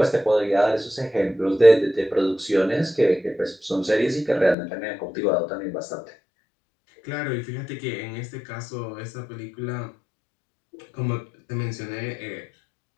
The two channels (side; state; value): right; drops out; at 4.5 s